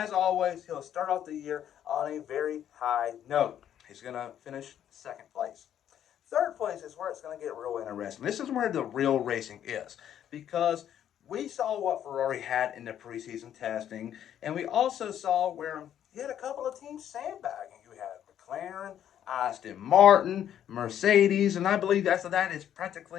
always, he'll start off the year on a very high note. He's going to finish second place. Third place is where it's going to get real interesting. This is where the real racing is, because we saw what Ferrari had in the preseason testing, and we also saw where you had a couple of teams sandbagging. You had McLaren, Aston Martin, Mercedes, and I believe after that it's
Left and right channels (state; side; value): quieter; right; 10.3 dB